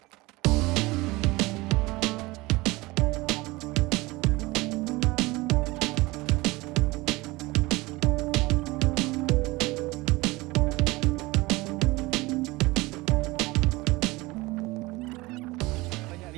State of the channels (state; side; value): quieter; left; 21.7 dB